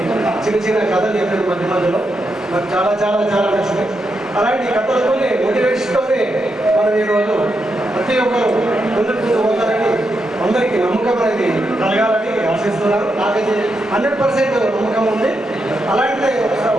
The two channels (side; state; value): both; normal; correlation 0.84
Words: చిన్న కథలు చెప్పారు మధ్యలో, నాకు చాలా చాలా చాలా నచ్చినాయి. అలాంటి కథలతోనే మోటివేషన్తోనే మనం ఈరోజు ప్రతి ఒక్కరు ముందుకు పోతారని అందరికీ నమ్మకం అనేది కలగాలని ఆశిస్తున్నాను. నాకైతే 100% నమ్మకం ఉంది. అలాంటి